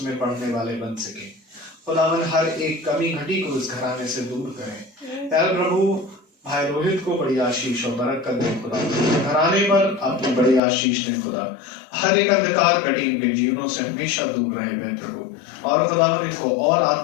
पढ़ने वाले बन सके। खुदावन हर एक कमी घटी को इस घराने से दूर करें। प्यारे प्रभु भाई रोहित को बड़ी आशीष और बरकत दे खुदा, घराने पर अपनी बड़ी आशीष दे खुदा, हर एक अंधकार घटी इनके जीवनों से हमेशा दूर रहे प्यारे प्रभु, और खुदावन इनको और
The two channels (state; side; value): drops out; right; at 10.6 s